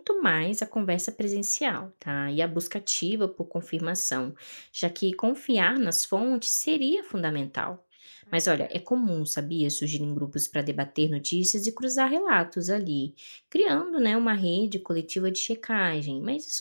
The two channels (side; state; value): both; inverted; correlation -1.00